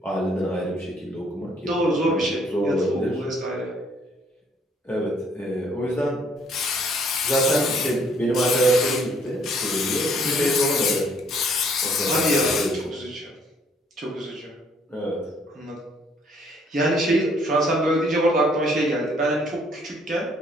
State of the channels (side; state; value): both; normal; correlation 0.64